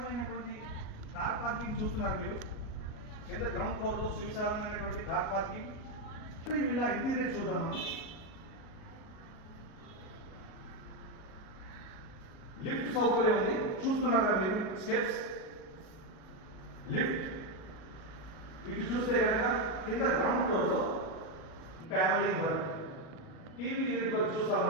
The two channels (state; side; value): late; right; 38 ms